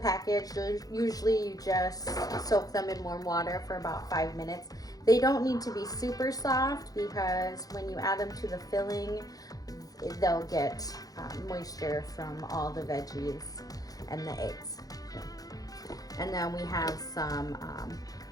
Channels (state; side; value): late; right; 0.18 ms